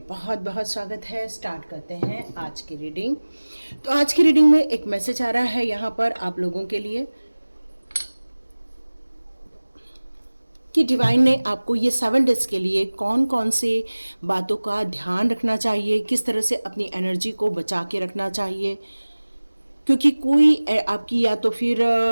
बहुत बहुत स्वागत है। स्टार्ट करते हैं आज की रीडिंग। तो आज की रीडिंग में एक मैसेज आ रहा है यहाँ पर आप लोगों के लिए कि डिवाइन ने आपको ये 7 डेज के लिए कौन कौन से बातों का ध्यान रखना चाहिए, किस तरह से अपनी एनर्जी को बचा के रखना चाहिए, क्योंकि कोई आपकी या तो फिर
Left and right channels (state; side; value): inverted; both; correlation -1.00